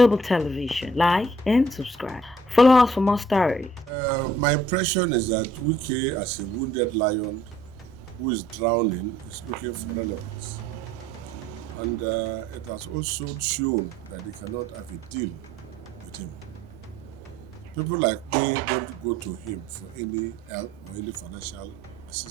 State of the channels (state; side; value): normal; both; correlation 0.59